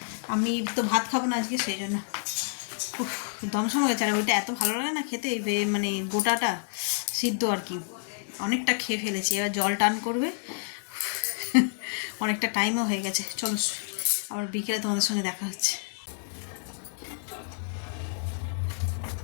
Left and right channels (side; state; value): right; silent; digital silence